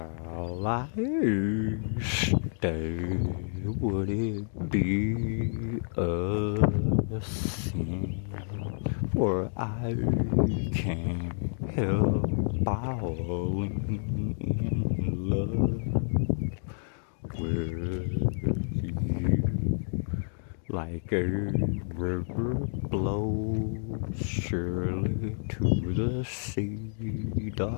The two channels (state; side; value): silent; right; digital silence